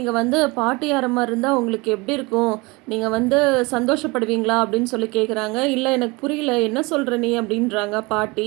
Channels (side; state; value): left; quieter; 25.2 dB